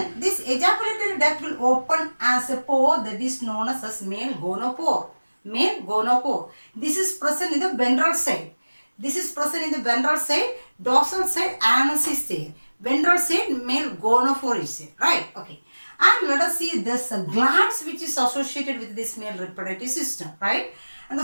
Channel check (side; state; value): both; inverted; correlation -1.00